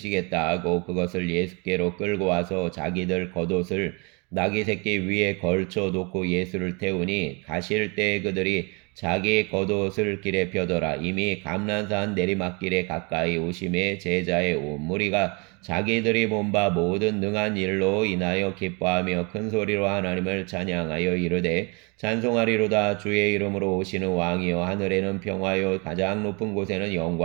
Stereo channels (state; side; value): quieter; left; 30.9 dB